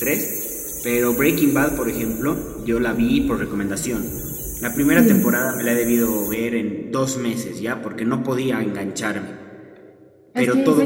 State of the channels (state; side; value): identical; both; correlation 1.00